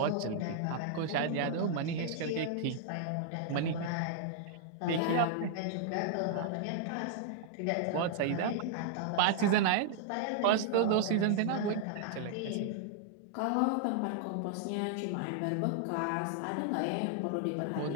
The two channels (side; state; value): both; different; correlation -0.01